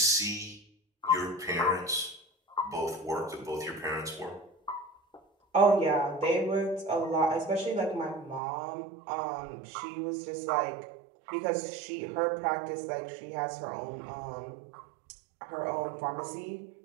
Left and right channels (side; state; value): left; drops out; at 8.4 s